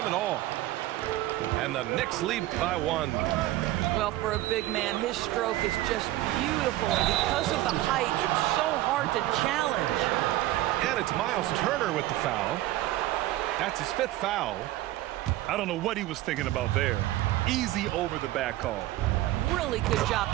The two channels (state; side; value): quieter; left; 16.1 dB